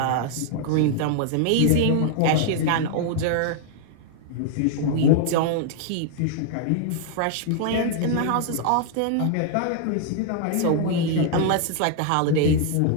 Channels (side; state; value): both; different; correlation 0.00